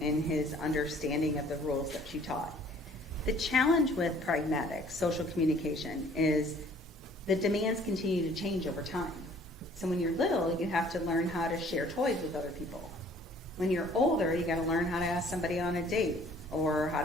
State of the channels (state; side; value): normal; both; correlation 0.55